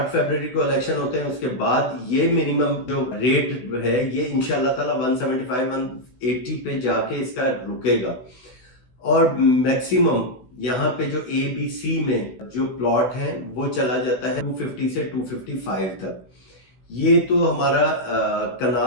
फरवरी को इलेक्शन होते हैं उसके बाद ये मिनिमम जो रेट है ये इंशाल्लाह ताला 175 180 पे जाके इसका रुकेगा। और मैक्सिमम यहाँ पे जो ए बी सी में जो प्लॉट है वो चला जाता है 250 से 255 तक। ये तो हमारा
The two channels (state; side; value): late; right; 16 ms